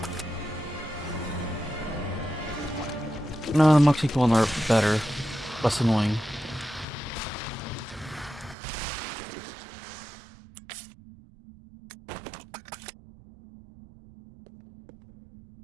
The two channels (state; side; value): drops out; left; at 8.6 s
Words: No, the monkey one are better. Less annoying.